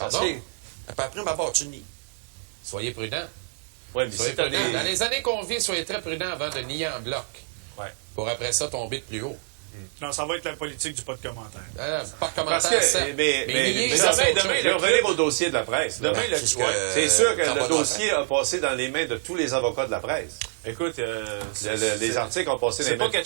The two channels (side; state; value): left; silent; 61 dB below the other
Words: Pardon? que... Après ma barre, tu nies. Soyez prudents. Ouais, mais Soyez c'est pas prudents. des... Dans les années qu'on vit, soyez très prudents avant de nier en bloc. Ouais. Pour après ça tomber de plus haut. Non, ça va être la politique du pas de commentaire. Pas de Parce commentaire, que, certes. mais nier, demain, ça, c'est autre demain, chose. je vais revenir au dossier de la presse. là. Demain, le- C'est ce ouais. que- C'est sûr que ça va le dossier a passé dans les mains de tous les avocats de la presse. Écoute, Les articles ont passé dans c'est les pas mains.